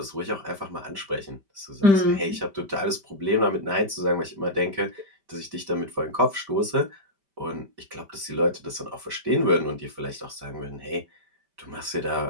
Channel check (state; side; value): late; left; 5.1 ms